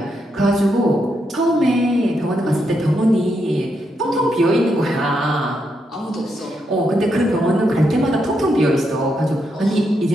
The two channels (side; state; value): both; normal; correlation 0.81